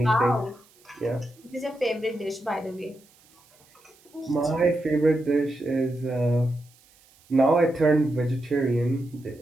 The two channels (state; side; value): noise; right; hiss, 30 dB below the sound